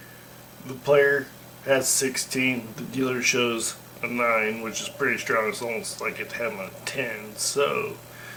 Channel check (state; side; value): identical; both; correlation 1.00